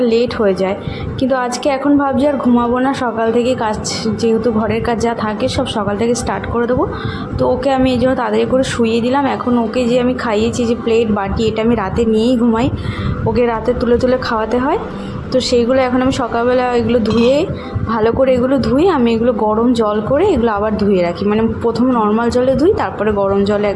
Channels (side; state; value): both; identical; correlation 1.00